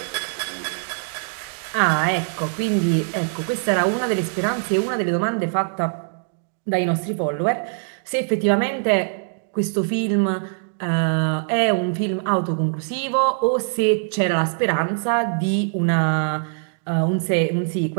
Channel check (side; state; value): left; silent; digital silence